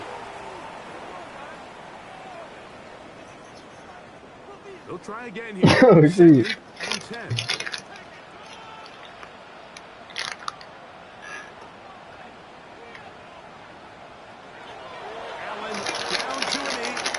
They'll try again here. Oh, shoot. 2nd and 10.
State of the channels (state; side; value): identical; both; correlation 1.00